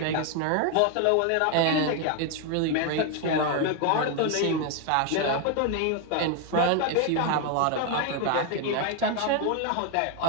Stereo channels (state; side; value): different; both; correlation 0.01